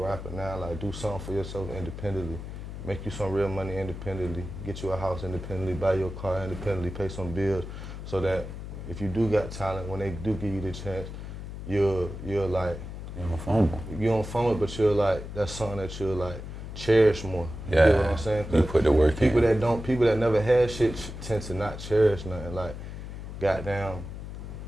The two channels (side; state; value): left; noise; hum, 9 dB below the sound